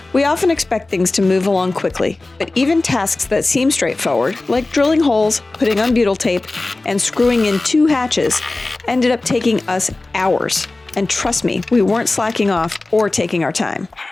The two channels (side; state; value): right; quieter; 3.1 dB